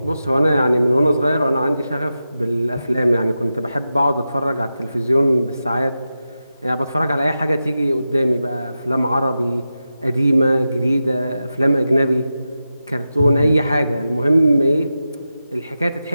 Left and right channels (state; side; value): inverted; both; correlation -0.91